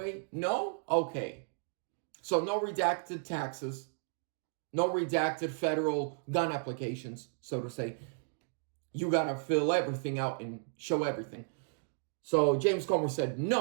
No? Okay. So no redacted taxes, no redacted federal gun applications, so to say. You got to fill everything out and show everything. So James Comer said,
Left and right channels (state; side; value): silent; left; digital silence